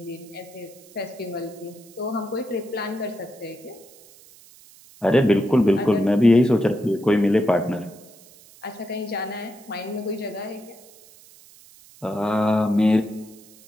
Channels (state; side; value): noise; right; hiss, 24 dB below the sound